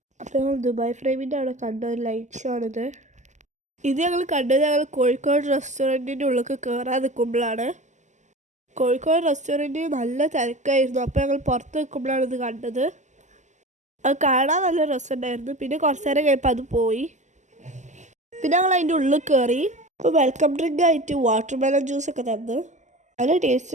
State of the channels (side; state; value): left; late; 0.34 ms